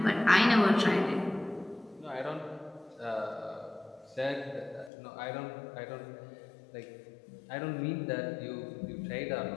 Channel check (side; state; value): right; drops out; at 4.9 s